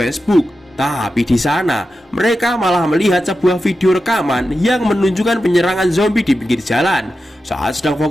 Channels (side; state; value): both; normal; correlation 0.90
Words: Tapi di sana mereka malah melihat sebuah video rekaman yang menunjukkan penyerangan zombie di pinggir jalan. Saat sedang